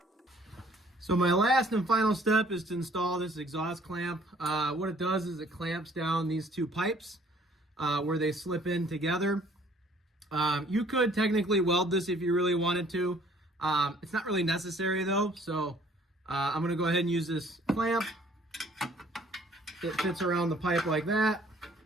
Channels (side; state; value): both; normal; correlation 0.58